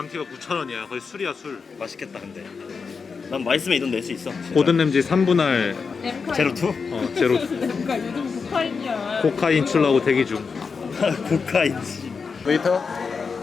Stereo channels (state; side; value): quieter; right; 5.2 dB